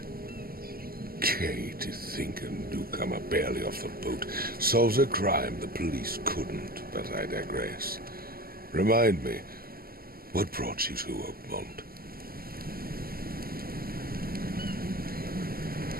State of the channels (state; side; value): late; left; 0.43 ms